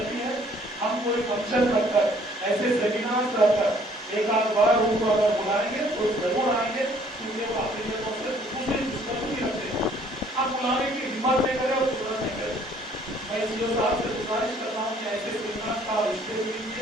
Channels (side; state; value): both; normal; correlation 0.60